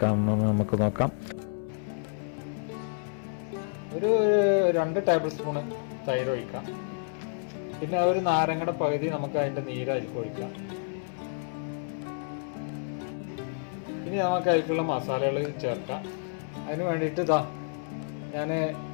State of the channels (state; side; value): silent; right; 58 dB below the other